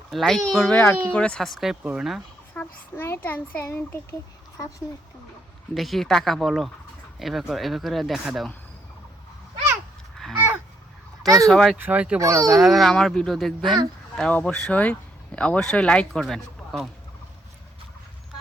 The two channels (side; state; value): both; normal; correlation 0.73